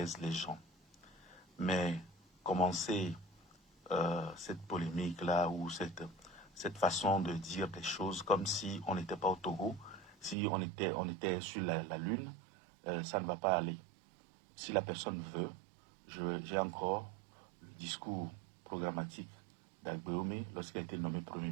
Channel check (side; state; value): left; drops out; at 10.4 s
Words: les gens. Mais commencer cette polémique-là ou cette façon de dire des choses comme si on n'était pas au Togo, si on était sur la Lune, ça ne va pas aller. Si la personne veut, j'ai encore le discours programmatique d'Agboué lorsqu'il a été nommé Premier